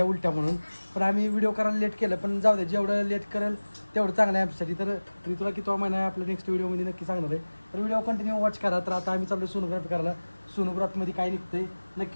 उलट्या म्हणून. पण आम्ही व्हिडिओ करायला लेट केलं, पण जाऊ दे, जेवढं लेट करेल तेवढं चांगलं आहे आमच्यासाठी. तर ऋतूला किती महिना आहे आपल्या नेक्स्ट व्हिडिओमध्ये नक्की सांगणार आहे. तर व्हिडिओ कंटिन्यू वॉच करा. तर आता आम्ही चाललो सोनोग्राफी करायला. सोनोग्राफीमध्ये काय निघतंय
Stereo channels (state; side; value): inverted; both; correlation -1.00